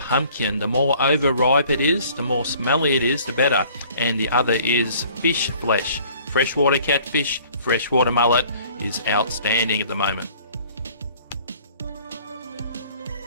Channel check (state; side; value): inverted; both; correlation -0.54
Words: The more overripe it is, the more smelly it is, the better. And the other is fish flesh. Freshwater catfish, freshwater mullet is outstanding at the moment.